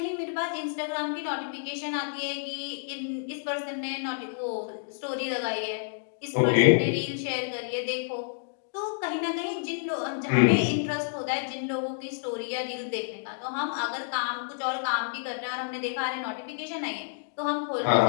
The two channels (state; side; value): silent; right; digital silence